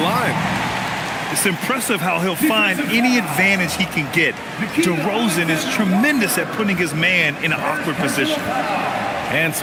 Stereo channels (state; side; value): identical; both; correlation 1.00